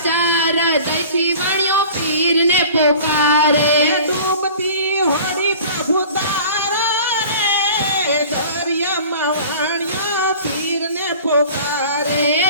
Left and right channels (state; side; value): inverted; both; correlation -0.43